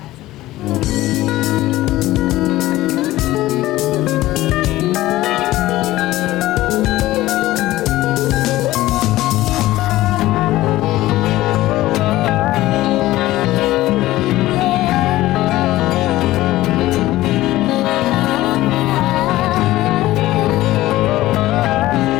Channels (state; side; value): quieter; right; 16.5 dB